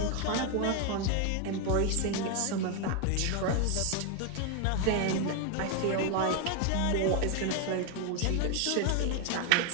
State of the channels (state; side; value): different; both; correlation 0.01